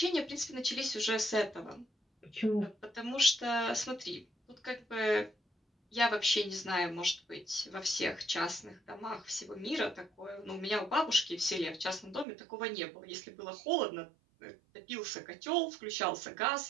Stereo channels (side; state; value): left; drops out; at 12.2 s